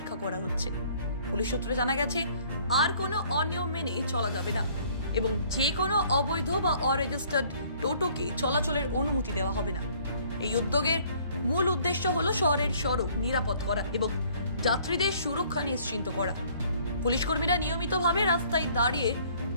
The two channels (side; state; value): both; inverted; correlation -0.58